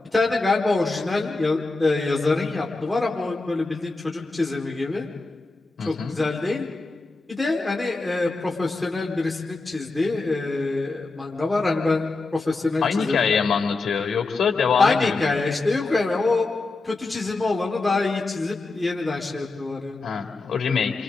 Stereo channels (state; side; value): quieter; right; 3.5 dB